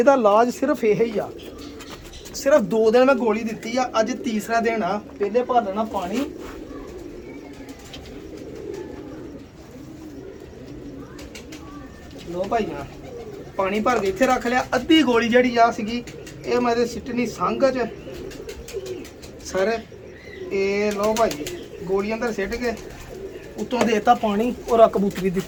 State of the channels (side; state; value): both; identical; correlation 1.00